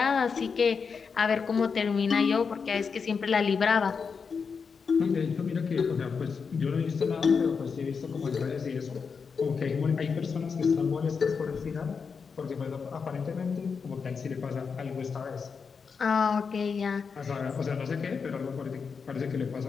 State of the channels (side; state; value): right; quieter; 5.6 dB